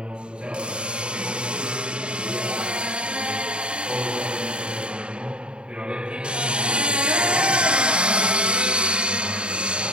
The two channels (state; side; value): late; left; 0.053 ms